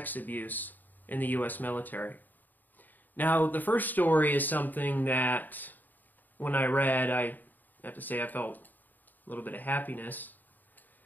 abuse in the U.S. military. Now, the first story is something that, when I read, I have to say I felt a little bit of happiness,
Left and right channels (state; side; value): late; right; 0.087 ms